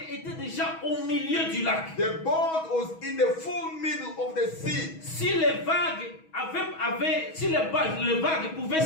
était déjà au milieu du lac. the boat was in the full middle of the sea. Si les vagues les vagues pouvaient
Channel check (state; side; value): late; right; 6.2 ms